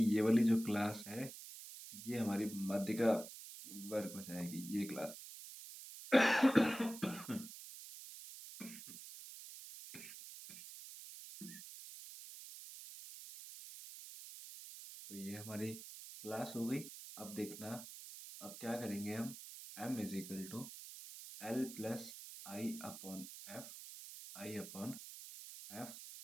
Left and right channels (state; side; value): noise; right; hiss, 12 dB below the sound